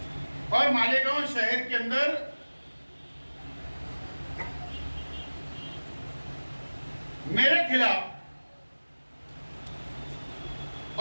और मालेगांव शहर के अंदर मेरे खिलाफ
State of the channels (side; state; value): both; inverted; correlation -1.00